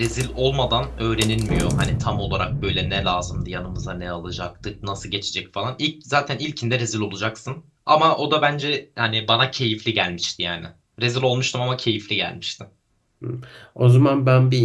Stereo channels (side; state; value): both; identical; correlation 1.00